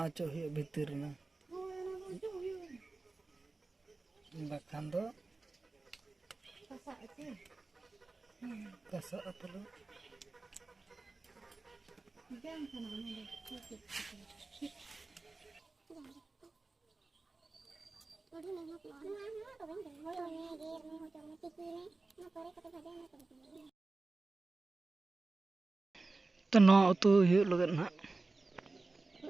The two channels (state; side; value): quieter; left; 3.5 dB